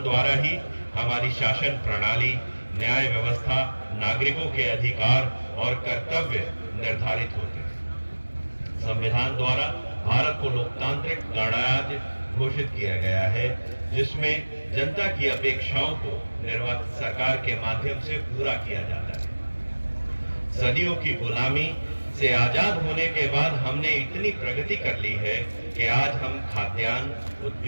द्वारा ही हमारी शासन प्रणाली, न्याय व्यवस्था, नागरिकों के अधिकार और कर्तव्य निर्धारित होते हैं। संविधान द्वारा भारत को लोकतांत्रिक गणराज्य घोषित किया गया है, जिसमें जनता की अपेक्षाओं को निर्वाचित सरकार के माध्यम से पूरा किया जाता है। सदियों की गुलामी से आजाद होने के बाद हमने इतनी प्रगति कर ली है कि आज हम खाद्यान्न,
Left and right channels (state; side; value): inverted; both; correlation -1.00